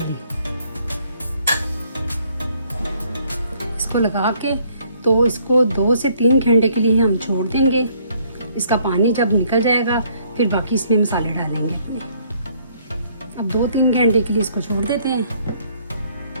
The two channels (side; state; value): both; inverted; correlation -0.65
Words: इसको लगा के तो इसको 2 से 3 घंटे के लिए हम छोड़ देंगे। इसका पानी जब निकल जाएगा फिर बाकी इसमें मसाले डालेंगे अपने। अब 2-3 घंटे के लिए इसको छोड़ देते हैं।